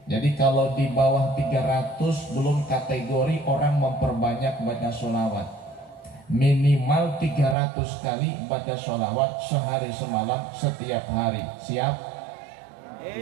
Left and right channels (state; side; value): drops out; left; at 7.6 s